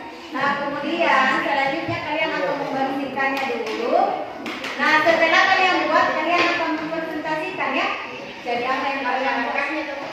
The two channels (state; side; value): identical; both; correlation 1.00